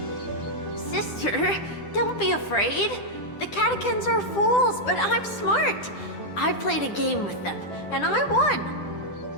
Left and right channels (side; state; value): right; late; 10 ms